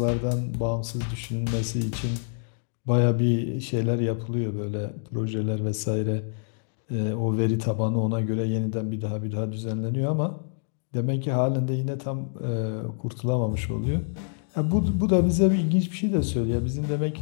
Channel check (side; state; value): right; silent; digital silence